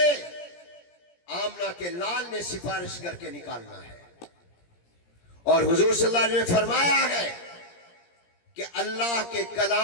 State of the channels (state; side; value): late; right; 17 ms